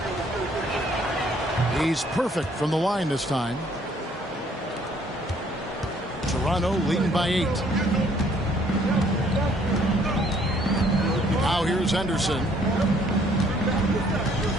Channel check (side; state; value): both; normal; correlation 0.63